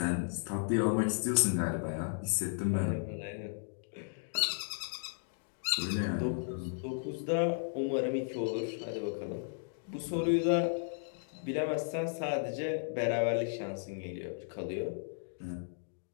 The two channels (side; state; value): right; silent; digital silence